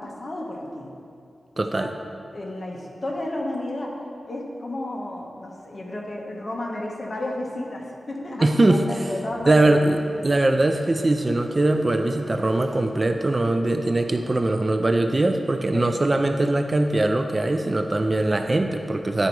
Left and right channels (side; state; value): both; normal; correlation 0.97